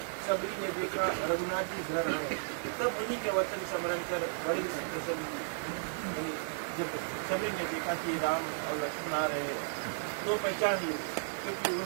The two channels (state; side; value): silent; left; digital silence